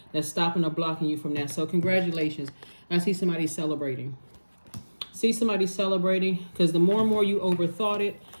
that's stopping or blocking you from that. So congratulations. I see somebody celebrating. Because the more and more you overthought it,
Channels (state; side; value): inverted; both; correlation -1.00